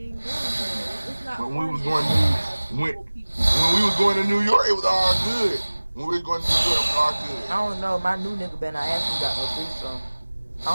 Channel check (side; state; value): both; inverted; correlation -1.00